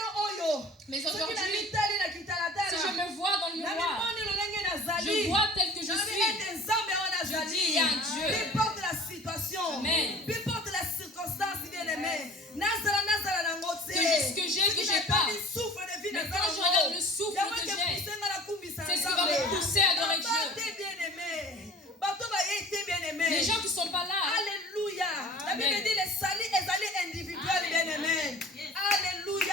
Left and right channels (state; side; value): normal; both; correlation 0.44